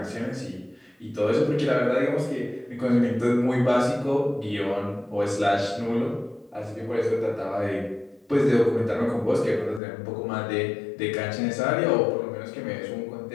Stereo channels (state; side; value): drops out; right; at 9.8 s